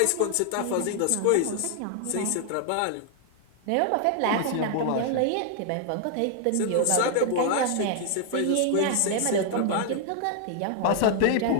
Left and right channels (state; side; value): different; both; correlation 0.00